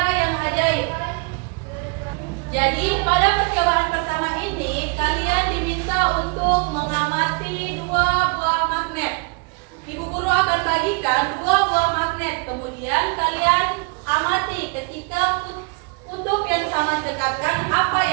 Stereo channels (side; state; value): left; quieter; 32.6 dB